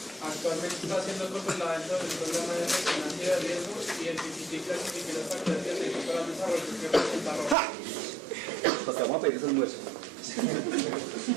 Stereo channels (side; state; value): left; drops out; at 7.6 s